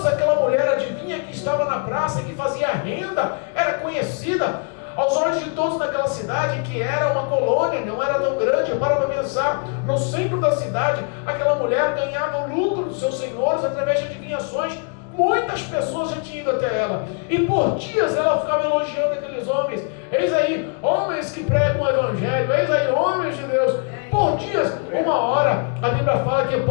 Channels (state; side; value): quieter; right; 39.1 dB